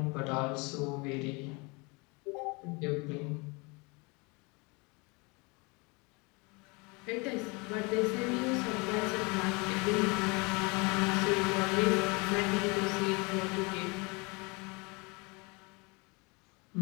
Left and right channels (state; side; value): quieter; right; 28.6 dB